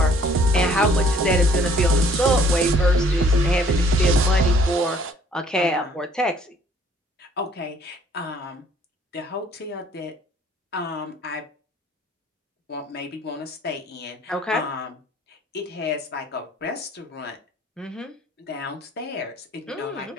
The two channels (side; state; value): both; normal; correlation 0.59